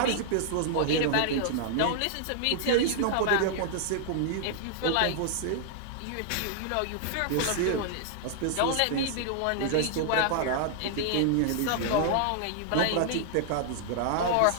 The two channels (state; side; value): different; both; correlation -0.01